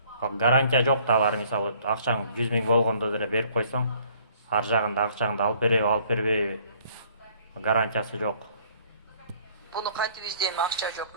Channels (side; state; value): both; inverted; correlation -0.59